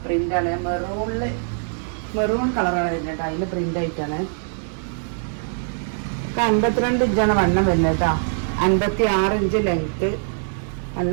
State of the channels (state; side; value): silent; left; digital silence